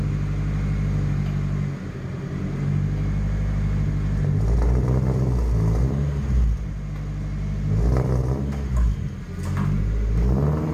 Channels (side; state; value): both; identical; correlation 1.00